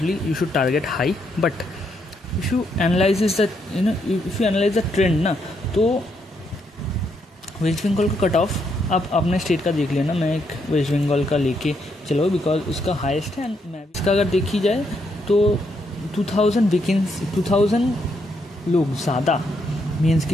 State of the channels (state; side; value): normal; both; correlation 0.76